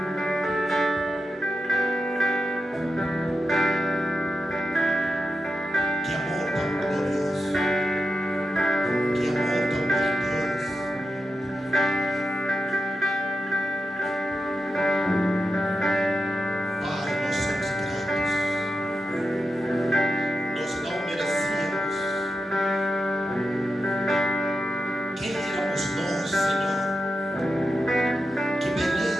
Que amor tão glorioso, que amor tão grandioso. Pai, nós somos gratos. Nós não merecíamos. Quem éramos nós, Senhor? Que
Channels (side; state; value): both; normal; correlation 0.89